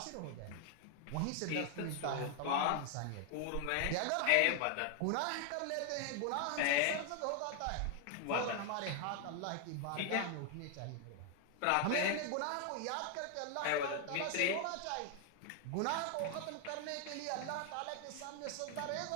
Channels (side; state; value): both; different; correlation 0.00